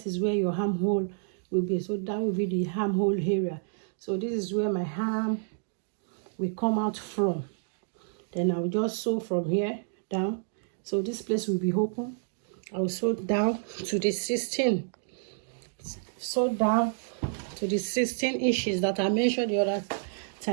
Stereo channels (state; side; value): silent; left; digital silence